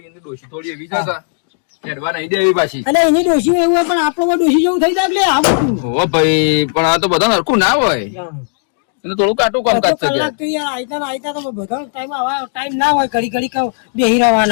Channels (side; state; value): right; silent; digital silence